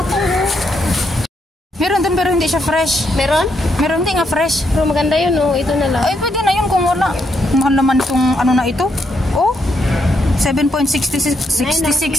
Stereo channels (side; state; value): both; normal; correlation 0.77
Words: Meron din pero hindi siya fresh. Meron? Meron din nga fresh. Pero maganda yun, ito na lang. Ay, pwede na yun kung wala. Mahal naman itong ano na ito.